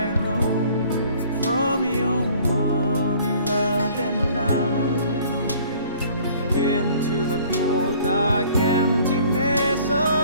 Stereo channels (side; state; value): both; inverted; correlation -0.54